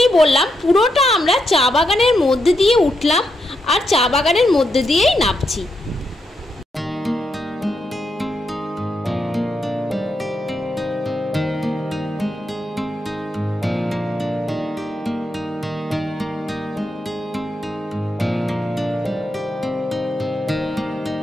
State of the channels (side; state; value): both; normal; correlation 0.82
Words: বললাম, পুরোটা আমরা চা বাগানের মধ্যে দিয়ে উঠলাম আর চা বাগানের মধ্যে দিয়েই নামছি।